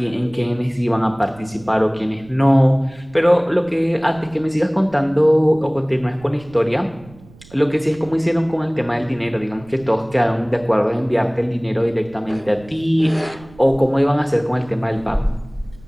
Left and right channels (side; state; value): right; noise; rumble, 23 dB below the sound